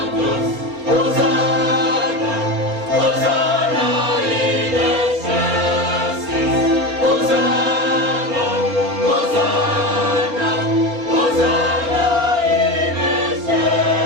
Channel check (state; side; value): late; left; 4.3 ms